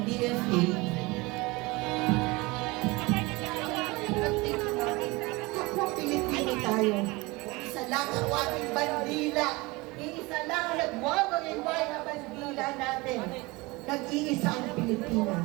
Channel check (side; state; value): left; quieter; 23.6 dB